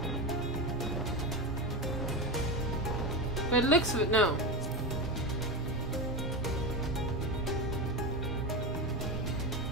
By the looks of it, no.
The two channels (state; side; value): normal; both; correlation 0.18